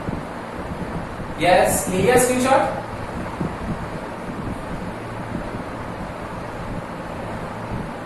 यस, लिया स्क्रीनशॉट।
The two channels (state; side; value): identical; both; correlation 1.00